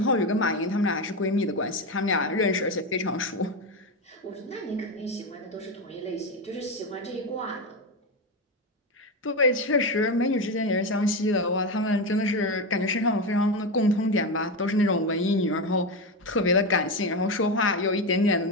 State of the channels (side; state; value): both; normal; correlation 0.15